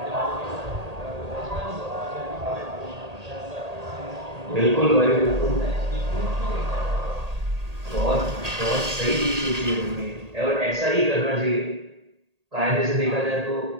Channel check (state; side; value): late; left; 1.8 ms